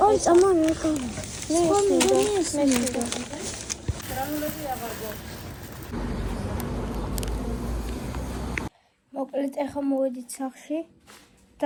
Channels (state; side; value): identical; both; correlation 1.00